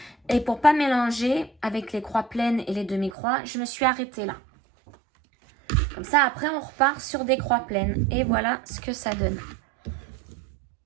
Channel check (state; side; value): drops out; left; at 3.2 s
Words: Et pour pas mélanger avec les croix pleines et les demi-croix, je me suis arrêtée là. Comme ça, après, on repart sur des croix pleines. Et voilà ce que ça donne.